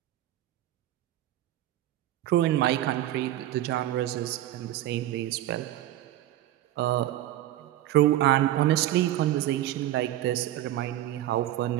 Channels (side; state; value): left; quieter; 14.0 dB